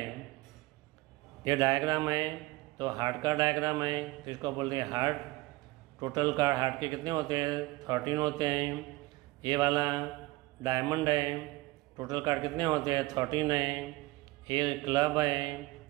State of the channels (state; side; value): quieter; left; 20.9 dB